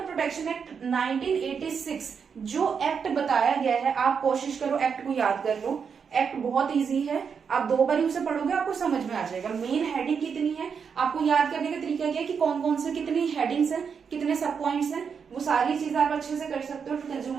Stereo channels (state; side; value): quieter; left; 6.4 dB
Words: act 1986, जो एक्ट बताया गया है, आप कोशिश करो एक्ट को याद कर लो, एक्ट बहुत इजी है, आप 2 बार उसे पढ़ोगे आपको समझ में आ जाएगा। मेन हेडिंग कितनी है, आपको याद करने का तरीका क्या है कि कौन कौन से कितनी हेडिंग्स हैं, कितने सब पॉइंट्स हैं, वो सारी चीजें आप अच्छे से कर सकते हो।